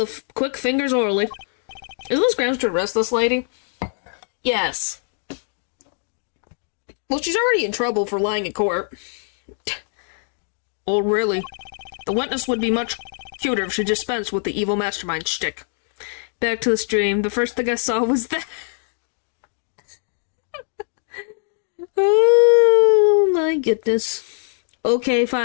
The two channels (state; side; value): silent; right; 60 dB below the other